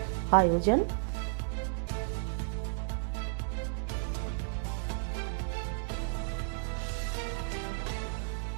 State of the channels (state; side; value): silent; left; digital silence